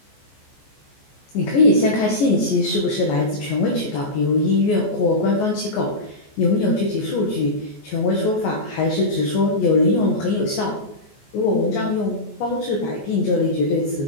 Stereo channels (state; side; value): late; right; 14 ms